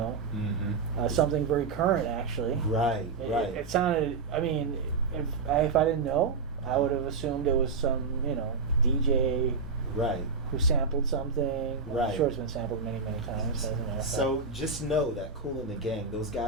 Something very current actually. Right. It sounded. I mean, if I didn't know, I would have assumed it was some DJ Right. who sampled something. Right. I'm sure it's been sampled many times. Doesn't matter. So just know that Kool and the Gang, those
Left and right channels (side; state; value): left; quieter; 4.6 dB